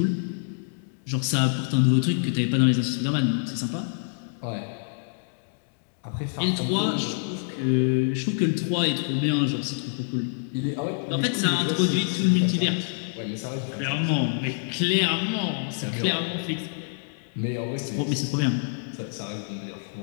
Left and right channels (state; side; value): silent; right; digital silence